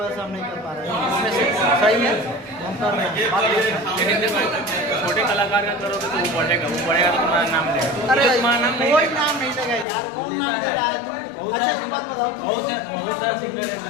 से हम नहीं कर पा रहे हैं। इसमें से सही है हम कर रहे हैं। लेकिन देखो छोटे कलाकार का करोगे तो वो बढ़ेगा तो तुम्हारा नाम लेगा। अरे तुम्हारा नाम कोई नाम नहीं देगा यार, कौन नाम दे रहा है तुम? अच्छा एक बात बताओ, बहुत सारा सिंगर है जो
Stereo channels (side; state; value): right; drops out; at 9.9 s